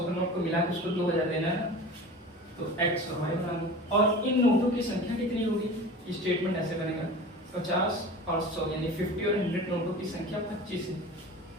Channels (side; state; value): both; normal; correlation 0.36